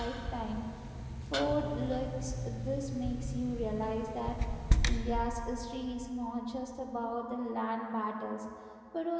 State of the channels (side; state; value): both; identical; correlation 1.00